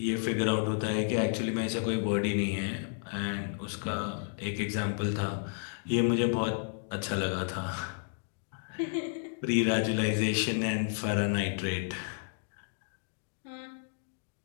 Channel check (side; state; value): right; silent; digital silence